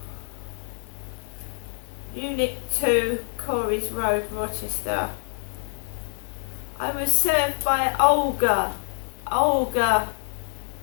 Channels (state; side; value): silent; right; 61 dB below the other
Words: Unit 2, Corey's Road, Rochester. I was served by Olga,